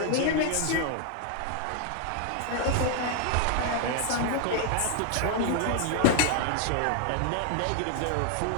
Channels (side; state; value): both; different; correlation 0.00